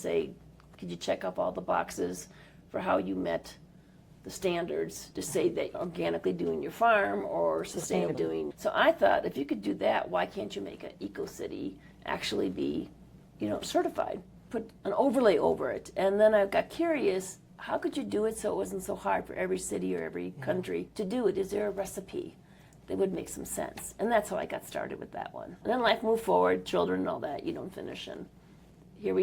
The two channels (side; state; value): both; identical; correlation 1.00